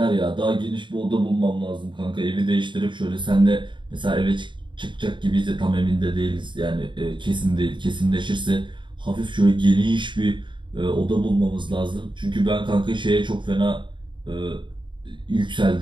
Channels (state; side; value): late; left; 0.23 ms